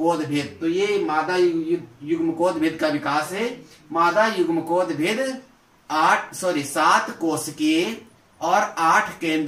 भेद। तो ये मादा युग्मकोद भेद का विकास है। मादा युग्मकोद भेद 7 कोशिकीय और 8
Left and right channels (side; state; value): both; identical; correlation 1.00